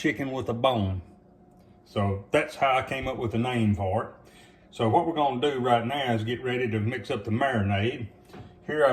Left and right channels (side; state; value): both; identical; correlation 1.00